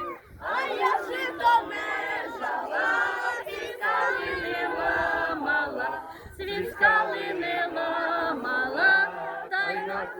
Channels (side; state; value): both; identical; correlation 1.00